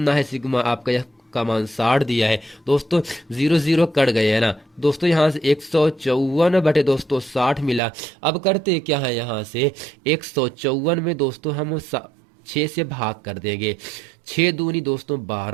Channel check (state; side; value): drops out; left; at 7.8 s